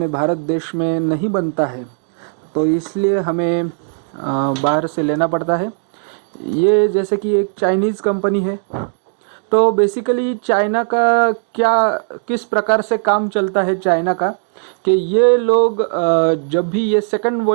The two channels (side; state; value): left; silent; digital silence